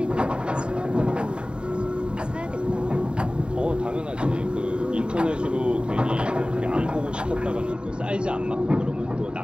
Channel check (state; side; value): late; left; 0.052 ms